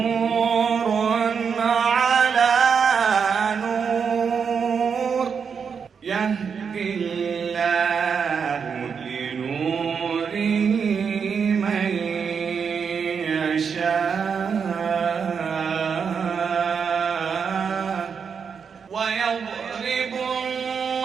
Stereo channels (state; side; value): quieter; left; 6.4 dB